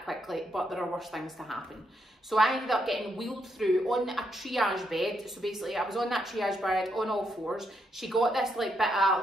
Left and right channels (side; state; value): both; normal; correlation 0.79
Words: quickly, but there are worse things to happen. So I ended up getting wheeled through on a triage bed. So basically I was on that triage bed on all fours. She got this like bit